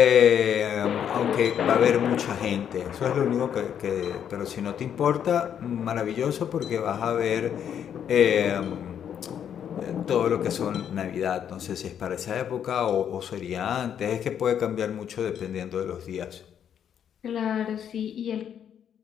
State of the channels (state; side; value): quieter; right; 8.9 dB